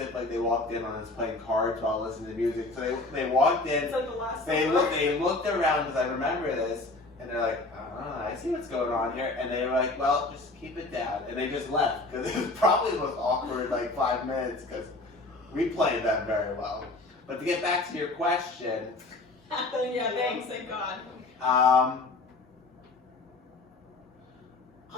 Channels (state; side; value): quieter; right; 3.1 dB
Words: like they walked in on us playing cards while listening to music. So they walked in. It's like the last. They looked around because I remember this, and they're like, I see what's going on here, and they were like, well, just keep it down, and they just left because it was probably the most awkward like 5 minutes because we played them very well. But to get back to your question, Yeah, thanks, thank God.